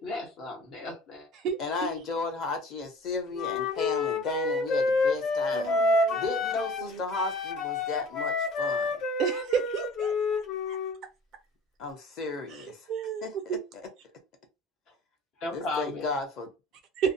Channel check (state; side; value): normal; both; correlation 0.43